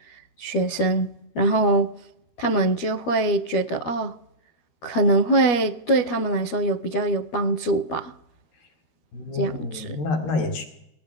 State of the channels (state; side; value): late; right; 12 ms